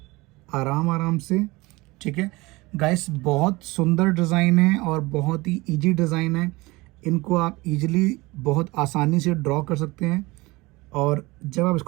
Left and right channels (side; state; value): left; quieter; 22.3 dB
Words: आराम आराम से। ठीक है गाइस, बहुत सुंदर डिज़ाइन है और बहुत ही इजी डिज़ाइन है। इनको आप इजीली बहुत आसानी से ड्रॉ कर सकते हैं और जब आप